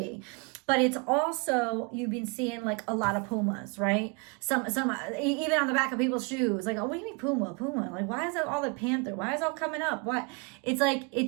But it's also, you've been seeing like a lot of pumas, right? Some even on the back of people's shoes, like, oh, what do you mean puma? Like, why is that all the panther? Why is it all coming up? What? It's like,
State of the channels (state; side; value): quieter; left; 31.7 dB